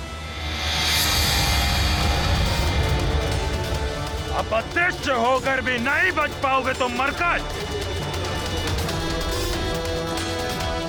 अब अदृश्य होकर भी नहीं बच पाओगे तो मरकट।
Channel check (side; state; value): both; identical; correlation 1.00